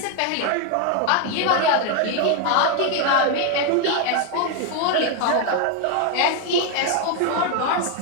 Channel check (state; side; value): different; both; correlation 0.01